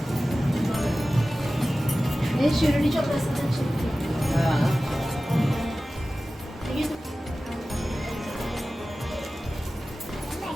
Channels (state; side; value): normal; both; correlation 0.96